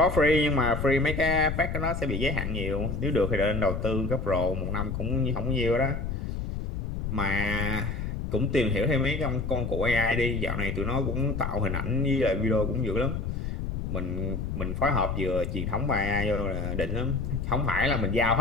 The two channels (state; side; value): noise; left; rumble, 3 dB below the sound